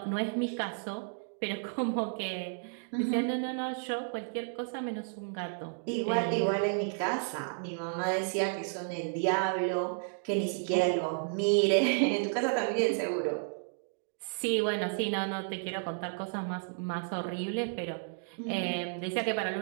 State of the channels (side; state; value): left; silent; digital silence